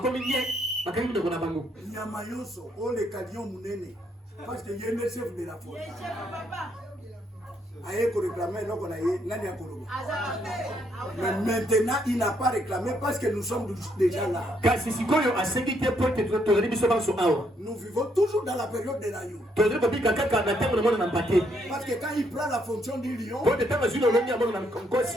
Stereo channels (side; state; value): both; normal; correlation 0.73